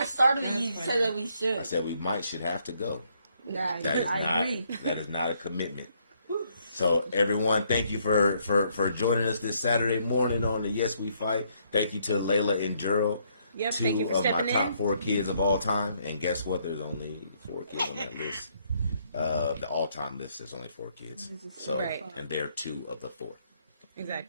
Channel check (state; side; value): inverted; both; correlation -0.71